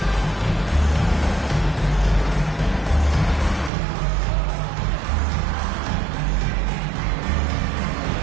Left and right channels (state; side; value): drops out; left; at 3.7 s